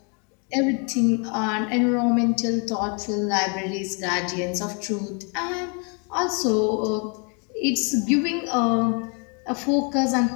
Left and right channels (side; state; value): right; quieter; 36.2 dB